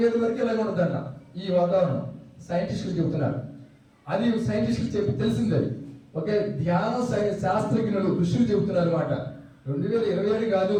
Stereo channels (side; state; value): both; identical; correlation 1.00